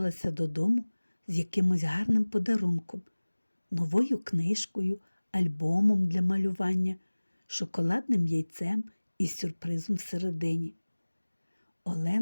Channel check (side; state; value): both; inverted; correlation -1.00